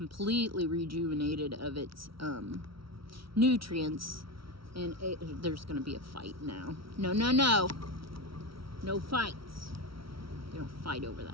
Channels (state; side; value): late; left; 0.75 ms